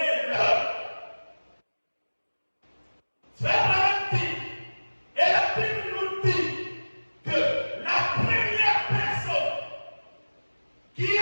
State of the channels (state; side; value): inverted; both; correlation -1.00